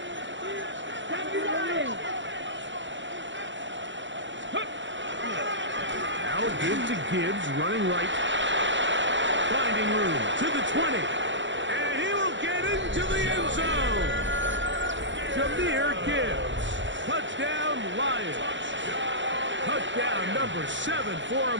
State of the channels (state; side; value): late; left; 0.54 ms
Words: Now a give to Gibbs, running right. Finding room to the 20. And he will get into the end zone. Jahmyr Gibbs. Touchdown, Lions. Touchdown number 7 for